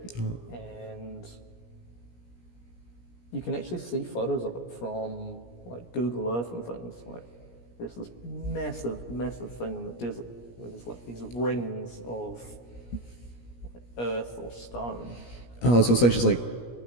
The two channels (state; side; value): late; right; 17 ms